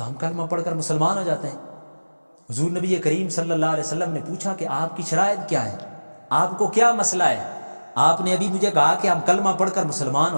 ہم کلمہ پڑھ کر مسلمان ہو جاتے ہیں. حضور نبی کریم صلی اللہ علیہ وسلم نے پوچھا کہ آپ کی شرائط کیا ہے، آپ کو کیا مسئلہ ہے؟ آپ نے ابھی مجھے کہا کہ ہم کلمہ پڑھ کر مسلمان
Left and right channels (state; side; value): inverted; both; correlation -1.00